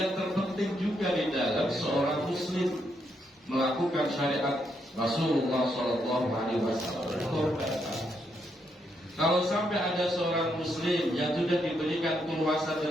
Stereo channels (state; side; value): normal; both; correlation 0.78